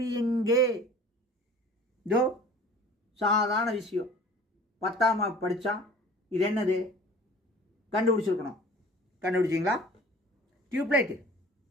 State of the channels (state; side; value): normal; both; correlation 0.46